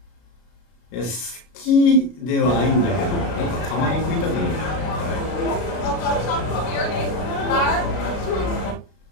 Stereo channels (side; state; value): right; late; 33 ms